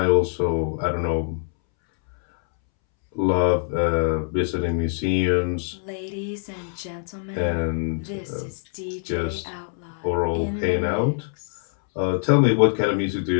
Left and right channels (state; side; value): silent; right; 63 dB below the other